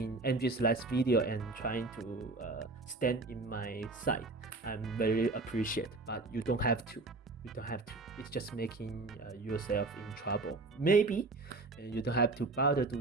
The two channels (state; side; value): quieter; left; 3.4 dB